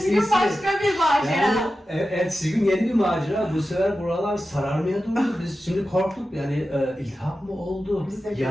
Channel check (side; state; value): both; normal; correlation 0.93